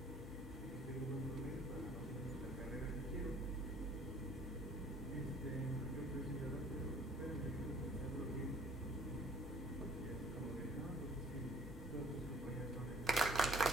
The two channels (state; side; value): normal; both; correlation 0.55